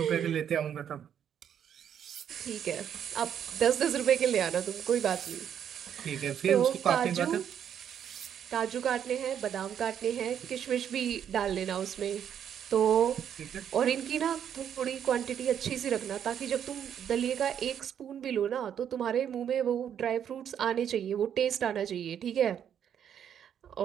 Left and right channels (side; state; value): left; quieter; 9.0 dB